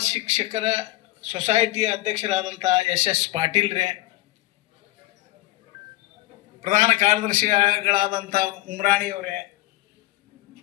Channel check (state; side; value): quieter; right; 17.7 dB